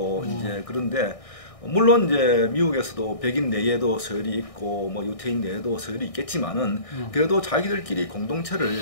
이제 그런데 물론 이제 미국에서도 백인 내에도 서열이 있고 뭐 유태인 내에도 서열이 있겠지만은 그래도 자기들끼리 공동체를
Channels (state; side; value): late; right; 1.6 ms